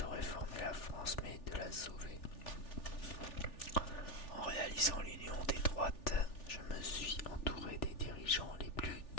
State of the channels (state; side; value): late; right; 3.4 ms